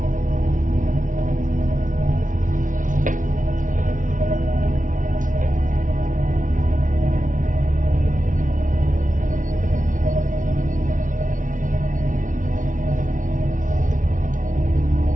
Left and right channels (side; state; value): left; late; 0.38 ms